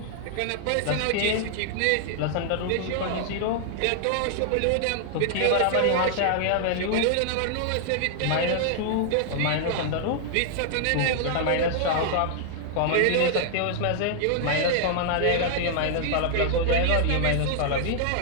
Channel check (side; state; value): both; different; correlation 0.00